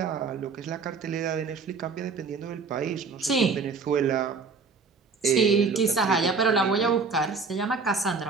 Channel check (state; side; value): quieter; left; 4.8 dB